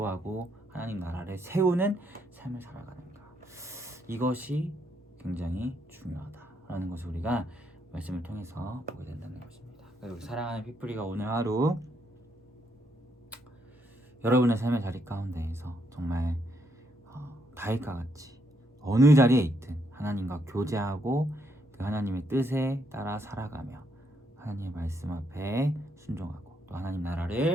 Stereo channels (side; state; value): both; normal; correlation 0.75